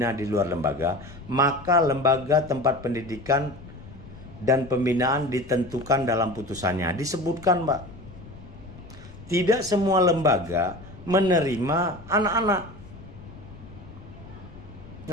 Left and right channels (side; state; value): left; noise; rumble, 17 dB below the sound